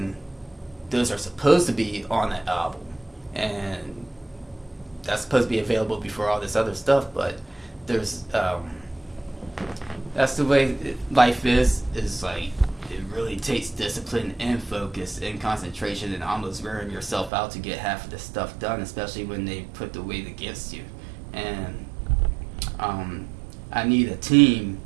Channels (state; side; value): drops out; left; at 17.3 s